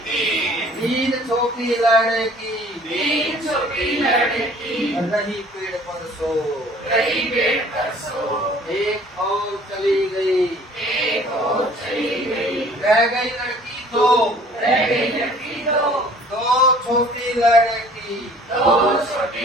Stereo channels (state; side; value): normal; both; correlation 0.52